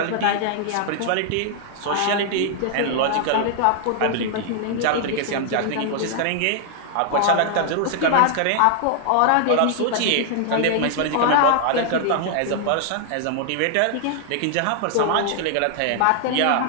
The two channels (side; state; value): both; different; correlation 0.00